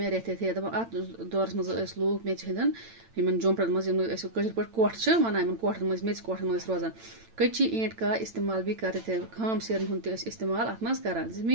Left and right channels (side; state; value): left; late; 8.9 ms